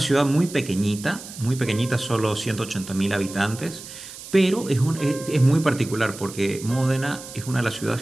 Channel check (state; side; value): noise; right; hiss, 14 dB below the sound